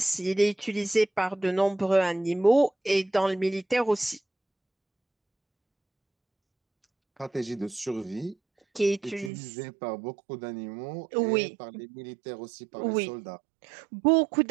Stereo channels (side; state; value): left; drops out; at 9.3 s